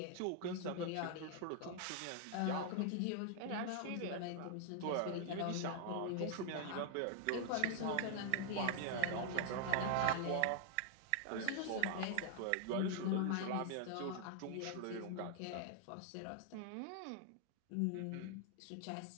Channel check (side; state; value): both; different; correlation 0.00